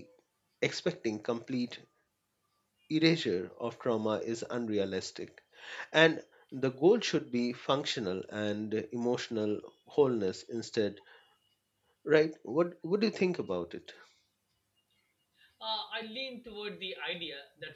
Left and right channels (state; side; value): identical; both; correlation 1.00